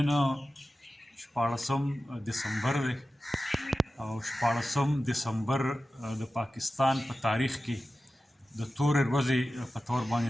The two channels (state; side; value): normal; both; correlation 0.94